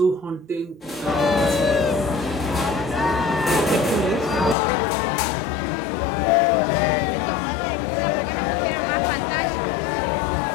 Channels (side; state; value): right; drops out; at 4.5 s